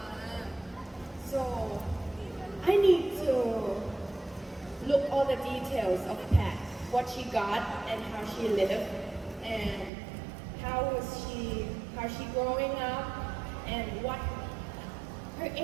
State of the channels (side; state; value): left; drops out; at 9.9 s